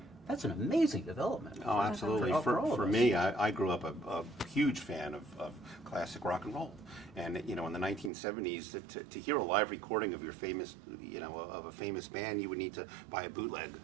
That's an amazing development. Oh, absolutely. For all of For us. me, I grew up a huge fan of classic rock and roll. And, you know, in the 1970s, to hear a live recording of your famous, you know, of a famous band, you would need to buy a bootleg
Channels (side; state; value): left; drops out; at 8.1 s